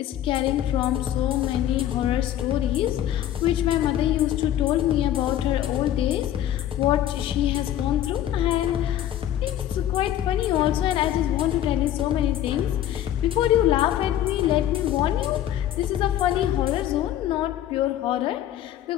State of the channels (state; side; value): quieter; right; 11.9 dB